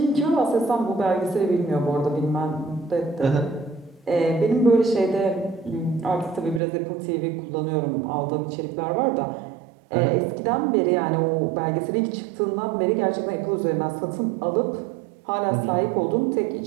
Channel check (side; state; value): left; drops out; at 6.6 s